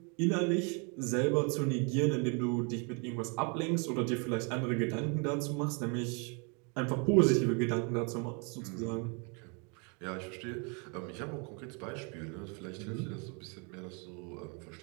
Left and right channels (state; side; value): quieter; left; 34.6 dB